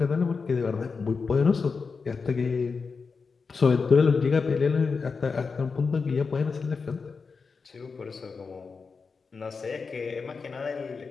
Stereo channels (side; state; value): right; quieter; 4.9 dB